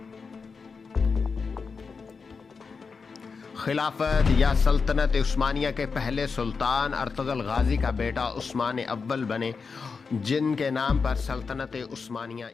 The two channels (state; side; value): quieter; right; 5.1 dB